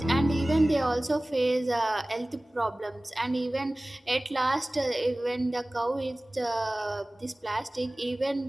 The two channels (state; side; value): normal; both; correlation 0.98